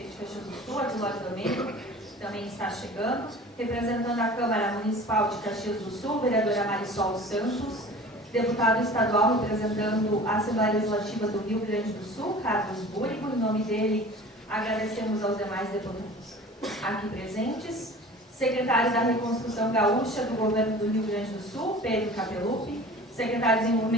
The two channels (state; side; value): normal; both; correlation 0.42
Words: de Caxias do Sul, Adilóide Domênico, também está chegando, representando a Câmara Municipal de Caxias do Sul, vereadora Marisol Santos, deputado estadual representando a Assembleia Legislativa do Rio Grande do Sul, Carlos Búrigo. Em nome dele, agradecemos aos demais deputados aqui presentes. Secretário da Reconstrução Gaúcha do Governo do Rio Grande do Sul, Pedro Capelupi. Secretário de